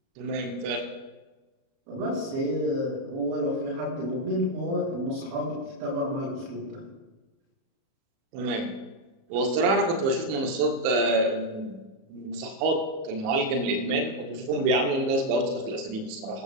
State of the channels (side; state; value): left; late; 37 ms